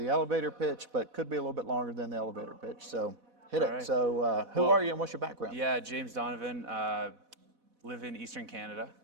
pitch, but could be a little bit longer than the elevator pitch. So hit it. Right. So who are you and what's your background? Yeah, James Donovan. Live in Eastern Canada,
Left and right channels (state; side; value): late; left; 4.1 ms